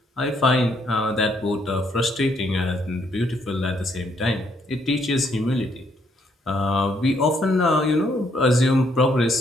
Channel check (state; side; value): normal; both; correlation 0.71